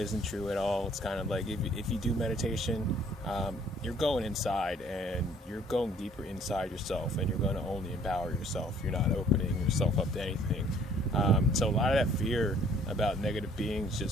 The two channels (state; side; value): normal; both; correlation 0.58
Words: true at all. It's kind of like if you do meditation, you're going inside and you're going deeper inside yourself, and you're going to only empower yourself. You're not opening yourself up to anything. So a lot of that fear about negative beings